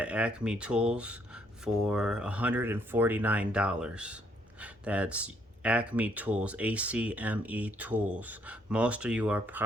Acme Tools for $149. That's Acme Tools, ACME Tools. Most of you are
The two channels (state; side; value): normal; both; correlation 0.70